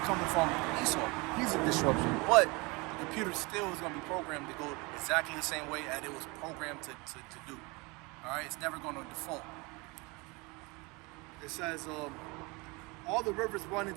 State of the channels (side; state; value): left; quieter; 26.7 dB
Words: from Esau. He's a disruption. But the computer still is going to be programmed to go exactly the same way as it was programmed to do. All right? It's never going to default. It says, all the rivers run